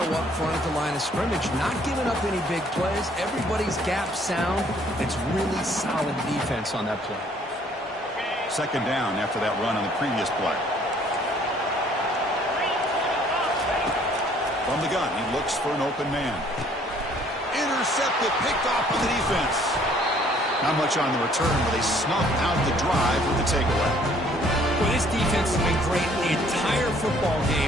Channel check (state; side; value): normal; both; correlation 0.60